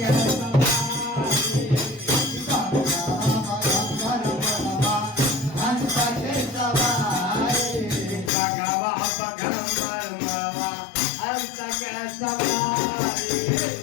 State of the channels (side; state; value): right; drops out; at 8.3 s